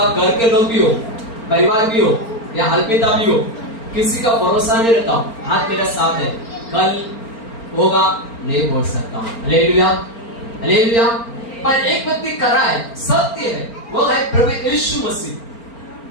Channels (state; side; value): late; right; 4.4 ms